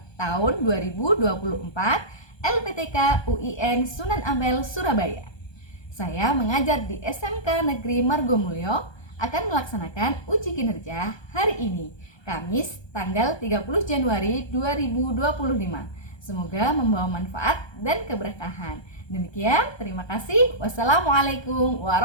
tahun 2024 LPTK UIN Sunan Ampel, Surabaya. Saya mengajar di SMK Negeri Margomulyo, akan melaksanakan uji kinerja hari ini, Kamis tanggal 30 Januari 2025. Semoga membawa manfaat dan keberkahan. Demikian, terima kasih. Wassalamualaikum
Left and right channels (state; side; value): late; right; 1.2 ms